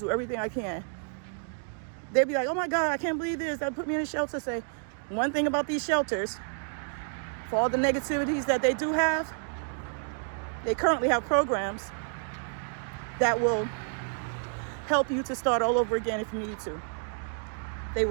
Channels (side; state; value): left; silent; 58 dB below the other